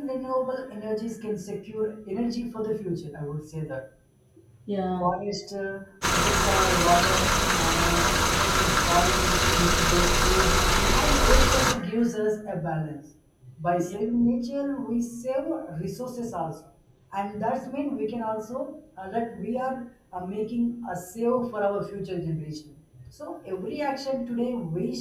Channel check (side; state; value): both; identical; correlation 1.00